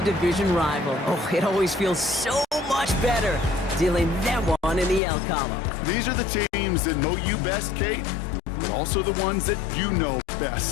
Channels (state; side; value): drops out; right; at 5.0 s